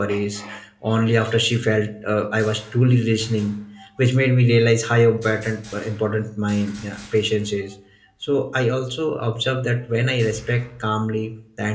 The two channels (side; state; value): both; identical; correlation 1.00